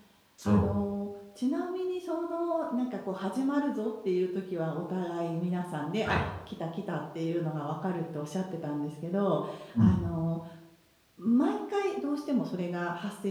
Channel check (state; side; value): identical; both; correlation 1.00